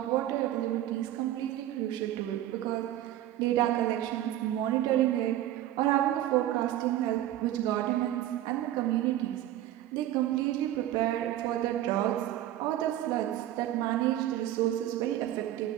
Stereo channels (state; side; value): quieter; left; 13.2 dB